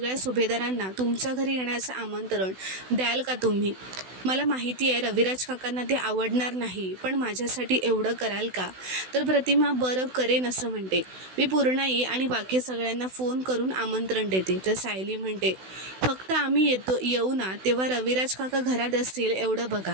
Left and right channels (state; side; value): late; left; 16 ms